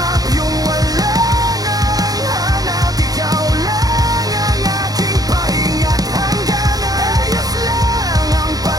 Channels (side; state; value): left; late; 0.18 ms